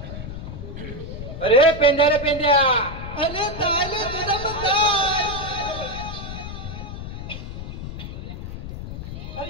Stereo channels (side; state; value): left; noise; rumble, 8 dB below the sound